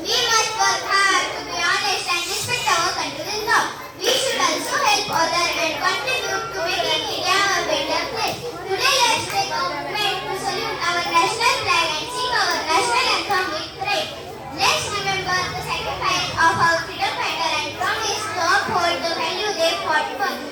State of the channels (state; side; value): identical; both; correlation 1.00